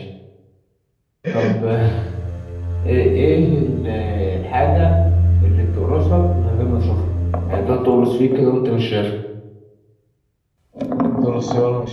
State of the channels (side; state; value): both; identical; correlation 1.00